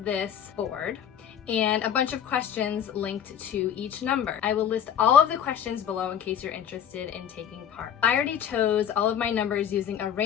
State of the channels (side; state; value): right; quieter; 9.1 dB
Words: this board and a bunch of questions linked to each number. I will list all of the questions below in case you're interested in taking part. I already chose all of my numbers using a